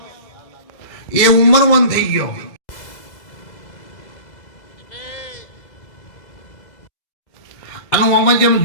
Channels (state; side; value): late; right; 2.0 ms